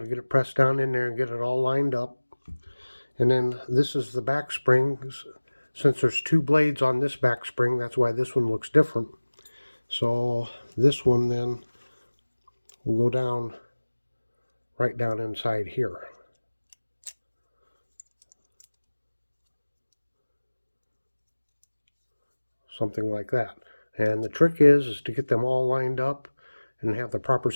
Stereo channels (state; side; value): inverted; both; correlation -1.00